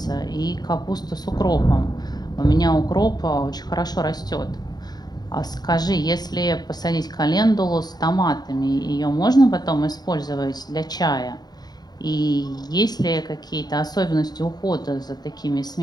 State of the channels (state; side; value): late; right; 0.20 ms